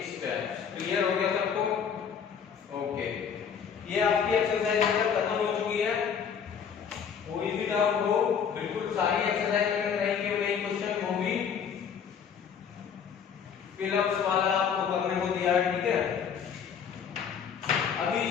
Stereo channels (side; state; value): right; quieter; 7.3 dB